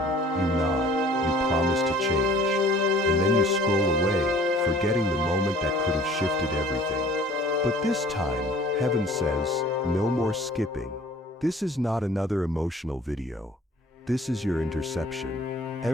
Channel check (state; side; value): normal; both; correlation 0.52